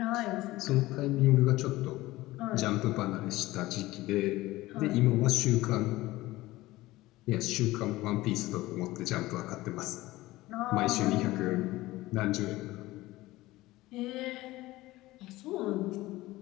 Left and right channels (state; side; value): quieter; right; 18.2 dB